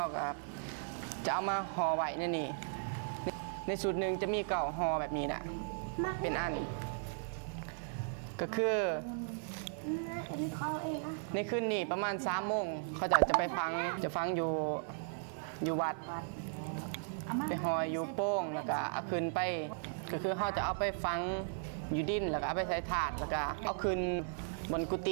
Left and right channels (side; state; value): left; silent; 53 dB below the other